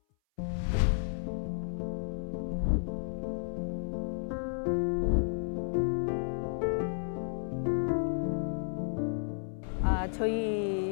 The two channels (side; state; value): right; silent; 56 dB below the other